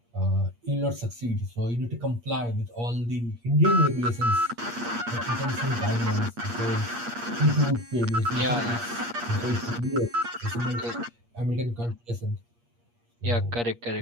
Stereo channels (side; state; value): left; late; 8.5 ms